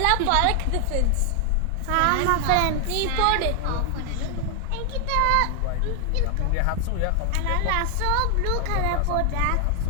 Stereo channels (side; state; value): both; different; correlation 0.00